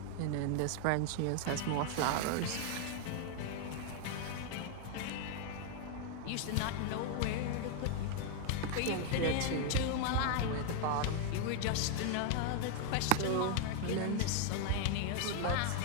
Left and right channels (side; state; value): both; different; correlation 0.00